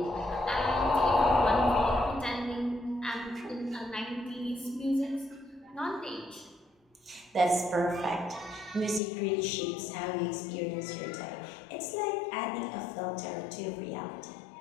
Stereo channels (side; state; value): right; drops out; at 9.0 s